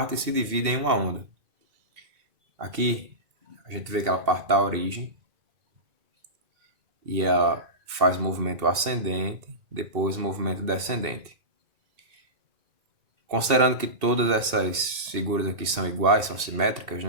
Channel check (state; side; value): late; left; 2.7 ms